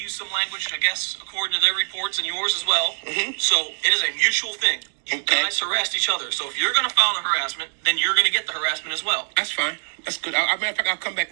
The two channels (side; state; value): left; silent; digital silence